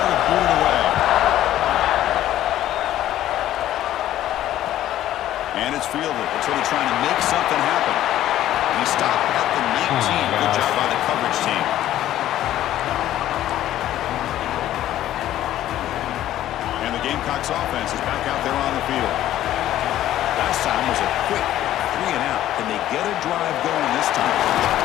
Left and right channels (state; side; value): quieter; right; 13.0 dB